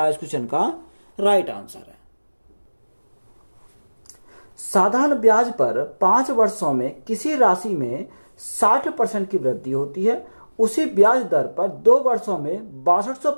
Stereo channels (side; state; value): both; inverted; correlation -1.00